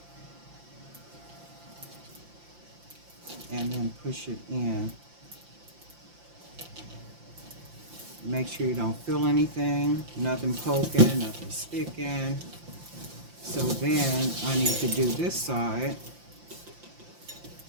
And then push it in. Make sure you don't feel anything, nothing poking, nothing sticking. So then I need to do this side.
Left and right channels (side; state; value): left; late; 5.8 ms